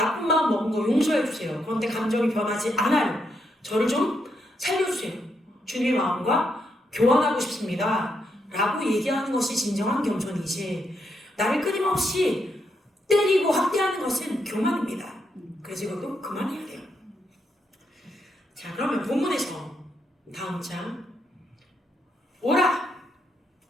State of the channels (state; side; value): normal; both; correlation 0.79